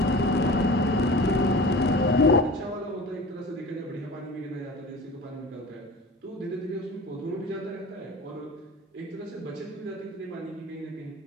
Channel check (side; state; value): both; normal; correlation 0.37